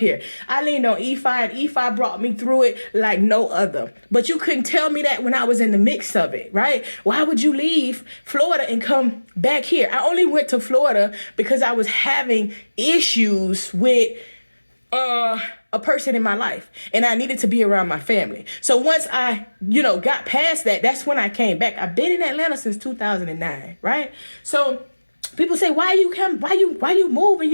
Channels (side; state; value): both; inverted; correlation -1.00